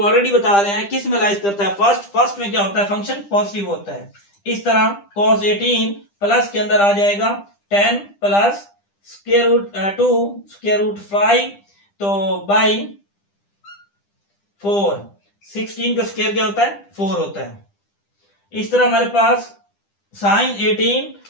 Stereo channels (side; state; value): right; late; 10 ms